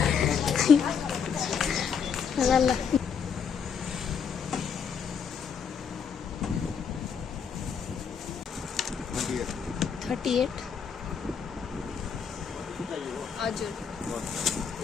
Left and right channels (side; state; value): right; quieter; 6.7 dB